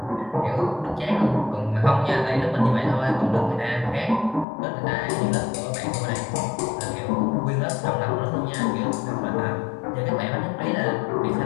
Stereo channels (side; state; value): right; drops out; at 4.5 s